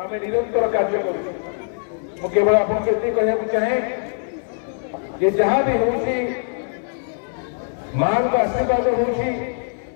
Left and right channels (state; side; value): silent; right; digital silence